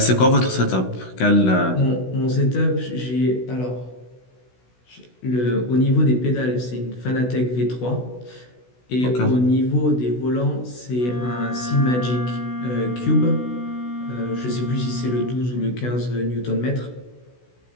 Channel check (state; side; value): late; right; 16 ms